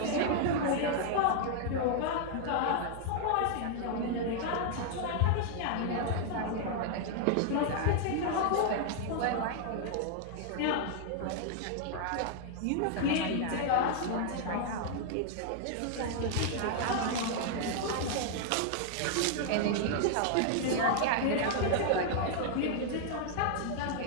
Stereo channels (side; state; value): both; different; correlation 0.00